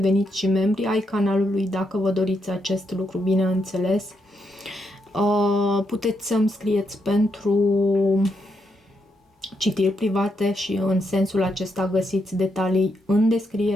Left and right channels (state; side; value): normal; both; correlation 0.80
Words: și membri ai canalului dacă vă doriți acest lucru, bineînțeles. Puteți să-mi scrieți pentru citiri private și în sensul acesta găsiți detalii în